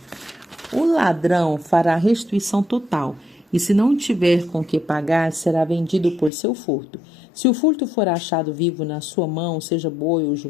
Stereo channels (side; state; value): right; drops out; at 6.3 s